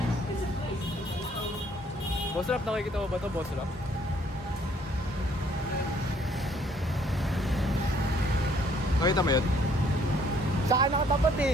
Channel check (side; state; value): both; normal; correlation 0.63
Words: Boss Rap, nakikita mo ba ito, Boss Rap? Nakita mo yun? Saan nakatapat